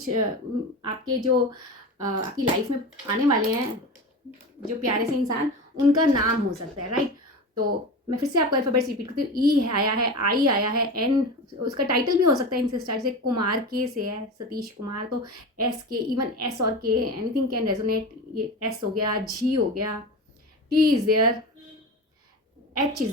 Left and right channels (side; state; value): both; normal; correlation 0.28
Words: आपके जो आपकी लाइफ में आने वाले हैं जो प्यारे से इंसान, उनका नाम हो सकता है, राइट। तो मैं फिर से आपको अल्फ़ाबेट्स रिपीट करती हूँ। ई आया है, आई आया है, एन उसका टाइटल भी हो सकता है इनसे स्टार्ट, से कुमार के से है, सतीश कुमार। तो एस के, इवन एस और के, एनीथिंग कैन रेजोनेट। ये एस हो गया, जी हो गया, T is there, H is